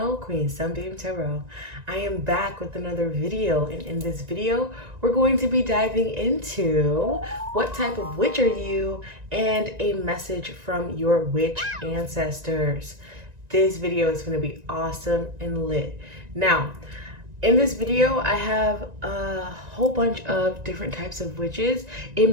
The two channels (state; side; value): late; left; 1.9 ms